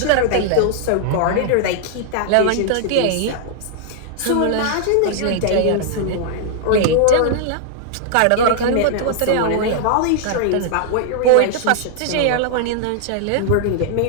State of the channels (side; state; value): both; different; correlation -0.01